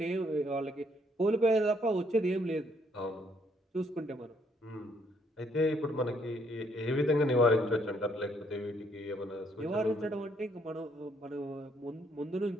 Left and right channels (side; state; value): both; normal; correlation 0.69